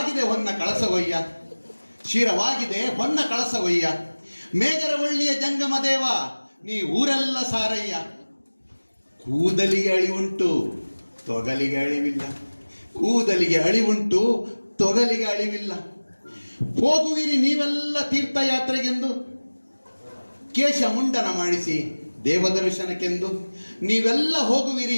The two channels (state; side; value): inverted; both; correlation -1.00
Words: ಹೊನ್ನ ಕಳಸವಯ್ಯ, ಶಿರವಾಗಿದೆ ಹೊನ್ನ ಕಳಸವಯ್ಯ. ಮೇಗರವಳ್ಳಿಯ ಜಂಗಮ ದೇವ, ನೀ ಊರೆಲ್ಲ ಸಾರಯ್ಯ. ಕೂದಲಿಗೆ ಅಳಿವುಂಟು ತೊಗಲಿಗೆ ಅಳಿವಿಲ್ಲ, ಕೂದಲಿಗೆ ಅಳಿವುಂಟು ತೊಗಲಿಗೆ ಅಳಿವಿಲ್ಲ. ಹೋಗುವಿರಿ ನೀವೆಲ್ಲ ತೀರ್ಥಯಾತ್ರೆಗೆಂದು, ಕೇಶ ಮುಂಡನ ಮಾಡಿಸಿ ದೇವದರ್ಶನಕ್ಕೆಂದು. ನೀವೆಲ್ಲ